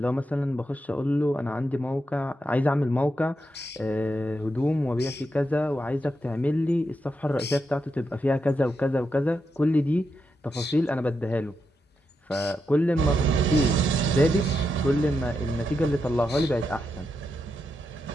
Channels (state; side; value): normal; both; correlation 0.85